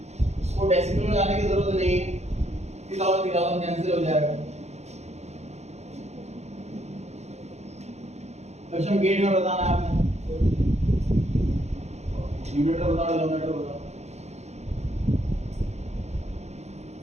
इसको डेसिमल में लाने की जरूरत नहीं है, 3,000 कैंसिल हो जाएगा। लक्ष्य गेट में बताना है आपने, न्यूमरेटर बताओ डिनोमिनेटर बताओ।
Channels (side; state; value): left; late; 0.32 ms